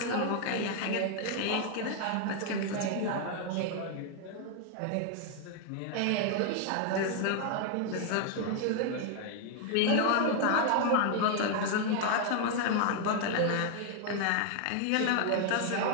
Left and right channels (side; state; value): both; different; correlation 0.00